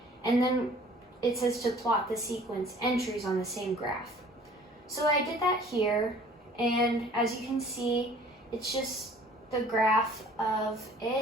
and then it says to plot the sequence entries on the same graph. So I did that here, and as you can see, it's just the graph of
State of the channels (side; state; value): both; normal; correlation 0.52